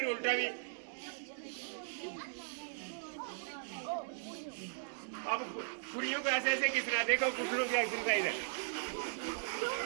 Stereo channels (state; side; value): silent; left; digital silence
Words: उल्टा भी। अब खुरियों को ऐसे ऐसे घिसना है, देखो घुटनों की एक्सरसाइज है।